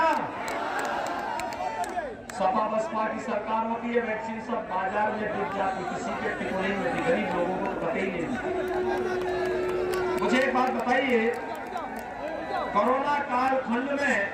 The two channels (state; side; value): identical; both; correlation 1.00